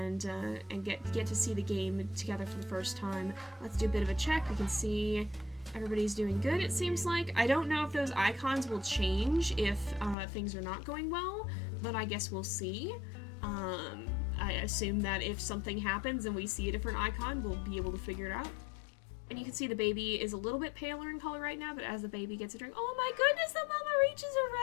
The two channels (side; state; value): right; drops out; at 10.2 s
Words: get to see the game together for the first time. Let's do a bit of a check. We can see everybody's doing good, it seems like. I don't know if those icons will change if things are not going well, but I guess we'll see. I assume that if something happens and we see a different icon, we'll be able to figure it out. And you can see the baby is a little bit paler in color right now, but as the baby gets a drink, oh my goodness, the mama reaches